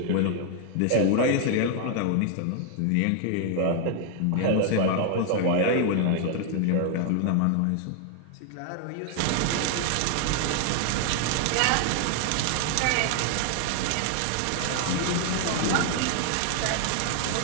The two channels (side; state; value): both; different; correlation 0.00